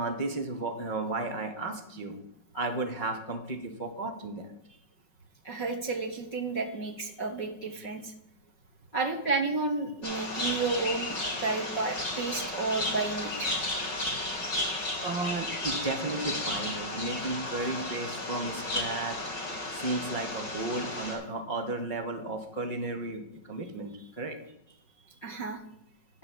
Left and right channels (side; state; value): right; late; 5.4 ms